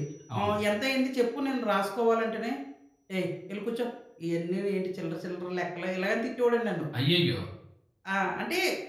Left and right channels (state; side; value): identical; both; correlation 1.00